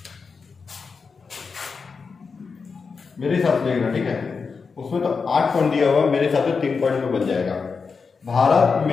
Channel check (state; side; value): quieter; right; 5.1 dB